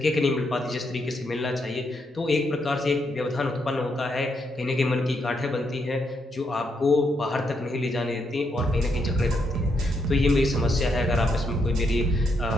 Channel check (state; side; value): normal; both; correlation 0.78